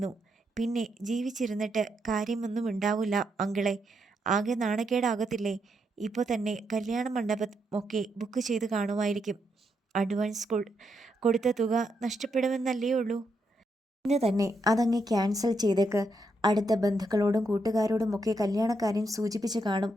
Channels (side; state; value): both; normal; correlation 0.80